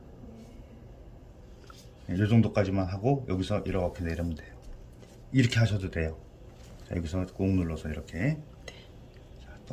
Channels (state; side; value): identical; both; correlation 1.00